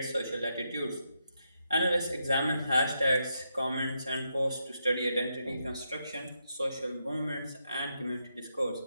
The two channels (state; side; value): inverted; both; correlation -0.83